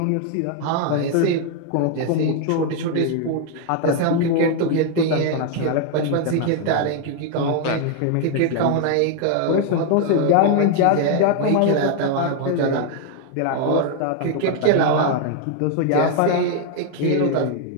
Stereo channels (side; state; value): both; different; correlation 0.00